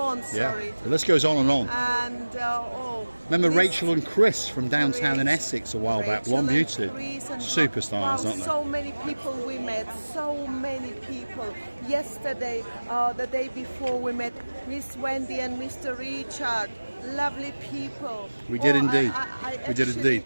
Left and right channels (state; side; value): inverted; both; correlation -1.00